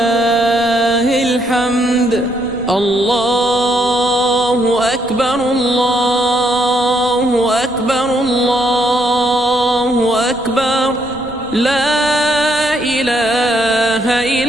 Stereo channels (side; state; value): right; noise; rumble, 19 dB below the sound